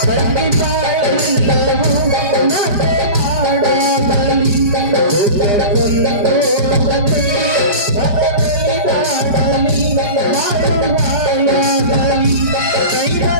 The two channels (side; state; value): left; late; 4.9 ms